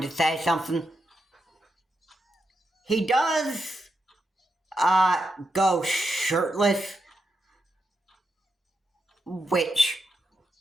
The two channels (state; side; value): normal; both; correlation 0.84